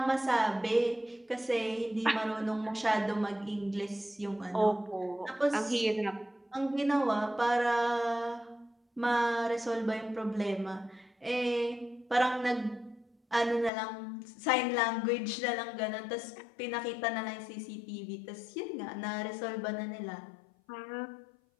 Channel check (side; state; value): right; drops out; at 13.7 s